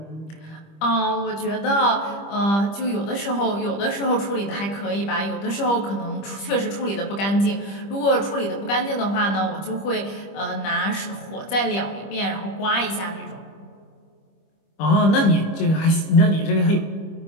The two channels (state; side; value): late; right; 25 ms